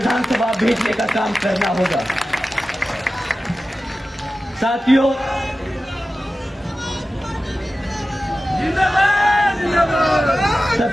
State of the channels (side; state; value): both; normal; correlation 0.94